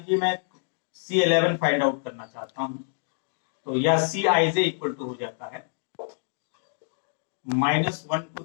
मैं C11 फाइंड आउट करना चाहता हूं तो यह Cij इक्वल टू हो जाता है -1 to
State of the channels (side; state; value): right; silent; digital silence